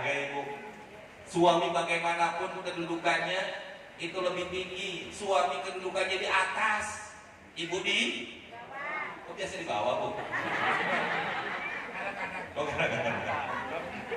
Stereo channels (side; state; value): both; identical; correlation 1.00